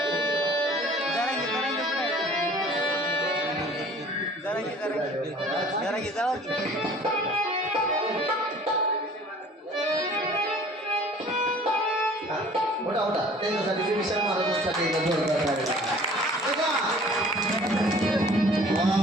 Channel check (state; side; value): normal; both; correlation 0.50